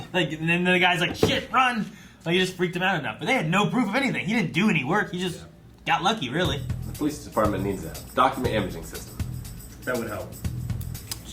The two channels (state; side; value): identical; both; correlation 1.00